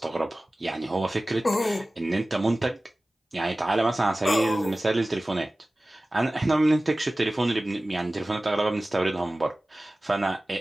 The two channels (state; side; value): normal; both; correlation 0.97